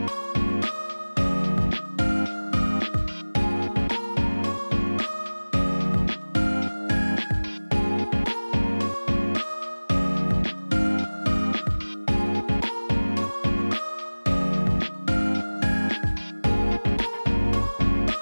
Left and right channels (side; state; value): both; inverted; correlation -1.00